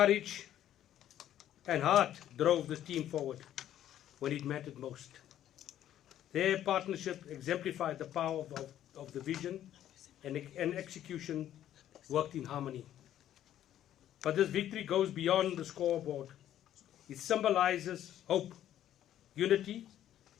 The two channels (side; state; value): right; quieter; 11.6 dB